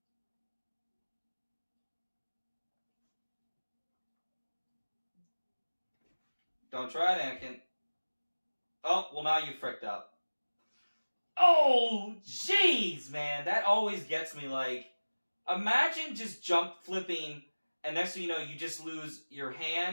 Don't try it, Anakin. Oh, well now you fricked up. Oh, jeez, man. That always gets me, like, imagine just jump flipping, and next thing you know, you just lose your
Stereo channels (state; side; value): inverted; both; correlation -1.00